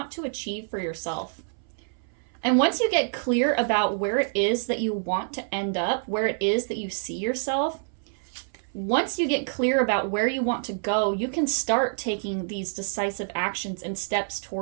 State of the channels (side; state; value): left; silent; 60 dB below the other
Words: to achieve for yourself. And once you get clear about where it is that you want to end up, where it is that you see yourself, once you get clear about where you want to go, you can start taking these decisive actions and steps